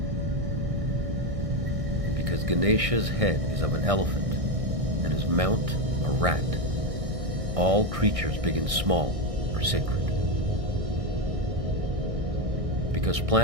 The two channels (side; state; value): left; late; 1.6 ms